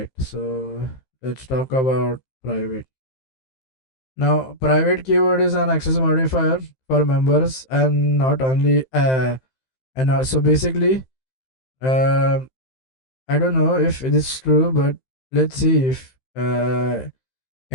So let's talk about private. Now, private keyword is an access modifier for members, and not only and also basically I don't know if it is true, but let's see if can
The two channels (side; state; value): right; late; 15 ms